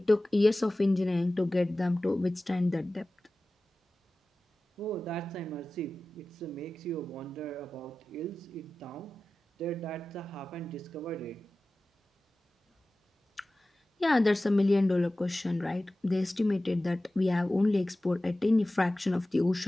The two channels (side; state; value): both; normal; correlation 0.96